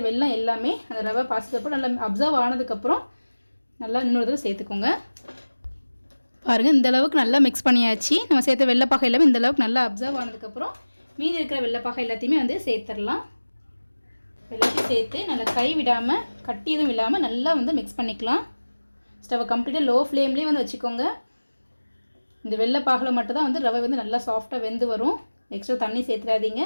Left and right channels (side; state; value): both; inverted; correlation -1.00